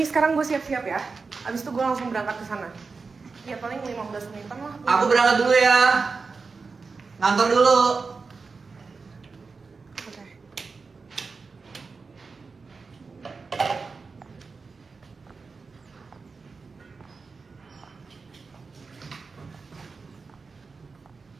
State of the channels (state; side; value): quieter; left; 4.5 dB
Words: sekarang gue siap-siap ya. Abis itu gue langsung berangkat ke sana. Ya paling 15 menitan lah. Aku berangkat dulu ya. Ngantor dulu. Oke.